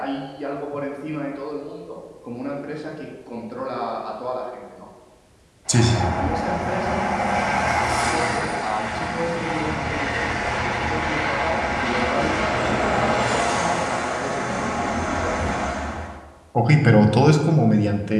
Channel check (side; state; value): both; identical; correlation 1.00